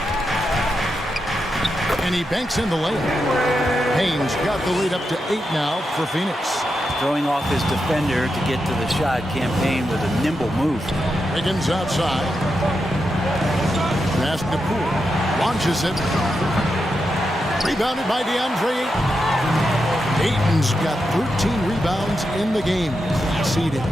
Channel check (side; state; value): both; normal; correlation 0.86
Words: And he banks in the layup. Payne's got the lead up to 8 now for Phoenix. Throwing off his defender to get to the shot. Cam Payne with a nimble move. Wiggins outside. Pass to Poole. Launches it. Rebounded by DeAndre Ayton. Ayton's got 13 rebounds in the game. Seeded.